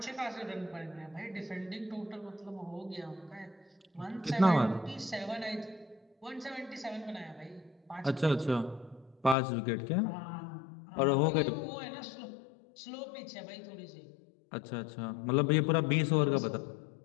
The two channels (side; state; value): right; drops out; at 9.3 s